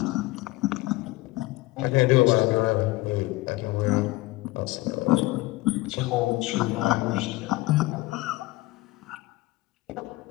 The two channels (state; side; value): quieter; right; 19.9 dB